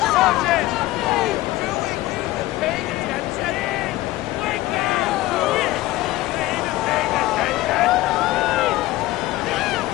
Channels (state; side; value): quieter; right; 17.4 dB